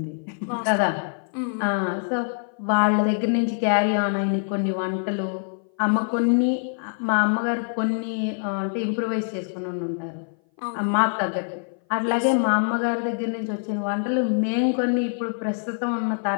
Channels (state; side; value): silent; right; 58 dB below the other